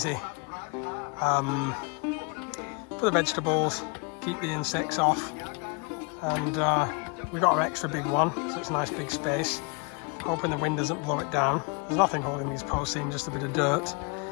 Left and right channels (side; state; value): right; quieter; 33.1 dB